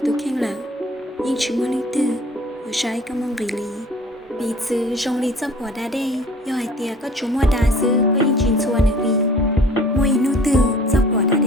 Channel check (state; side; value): normal; both; correlation 0.48